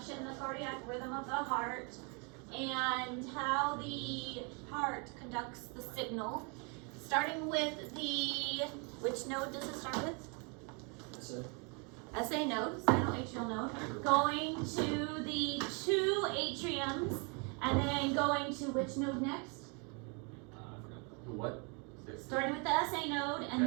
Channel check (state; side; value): quieter; left; 34.4 dB